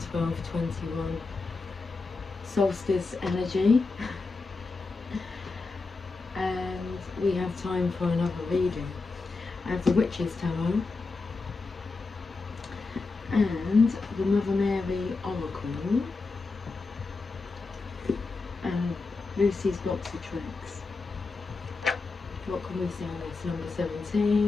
solstice energy and we have time for another reading. I have the Witch's Tarot and the Mother Mary Oracle and Lucy's box of tricks. What can we see on this? Number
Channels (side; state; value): right; quieter; 3.9 dB